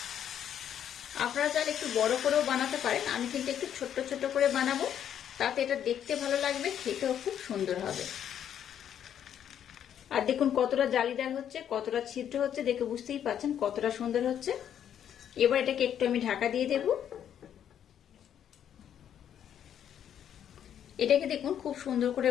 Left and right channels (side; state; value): right; quieter; 9.5 dB